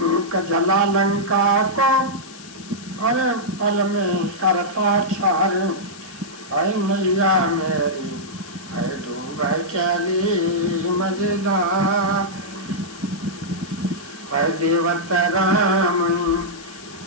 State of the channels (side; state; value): left; noise; hiss, 18 dB below the sound